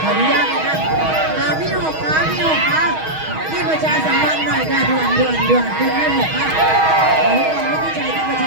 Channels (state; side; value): late; left; 6.3 ms